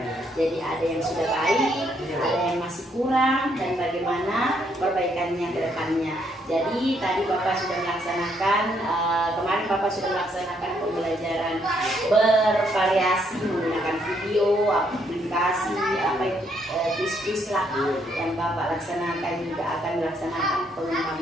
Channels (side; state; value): both; normal; correlation 0.72